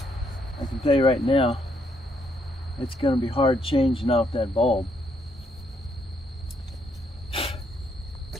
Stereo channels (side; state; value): both; normal; correlation 0.73